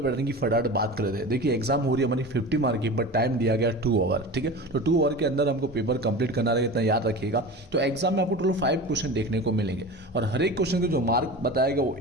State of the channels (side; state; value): both; normal; correlation 0.32